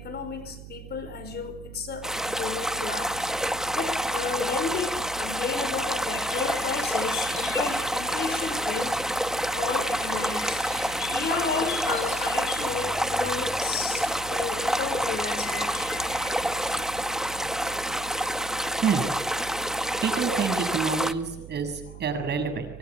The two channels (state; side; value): noise; right; hum, 14 dB below the sound